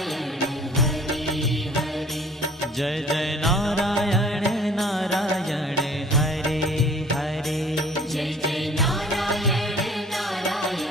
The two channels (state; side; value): normal; both; correlation 0.52